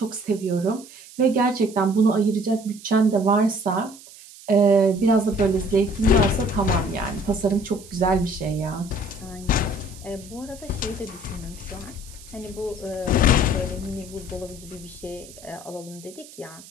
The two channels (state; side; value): noise; right; hiss, 19 dB below the sound